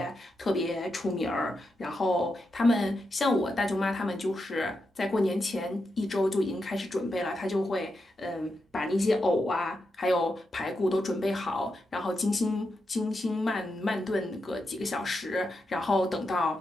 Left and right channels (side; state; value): both; normal; correlation 0.86